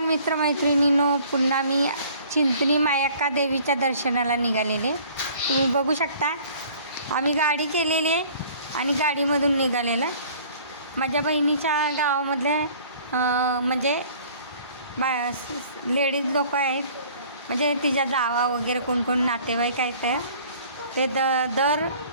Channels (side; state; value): both; inverted; correlation -0.52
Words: मित्रमैत्रिणींनो, पुन्हा मी चिंचणी मायक्का देवीच्या दर्शनाला निघालेले. तुम्ही बघू शकता आम्ही गाडी केलेली आहे आणि गाडीमधून निघालेलं. माझ्या बहिणीच्या गावामधले म्हणजे लेडीज लोक आहेत, म्हणजे तिच्या जावा वगैरे कोण कोण नातेवाईक आहेत ते दर